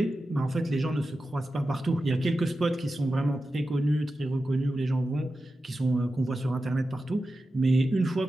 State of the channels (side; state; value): both; normal; correlation 0.92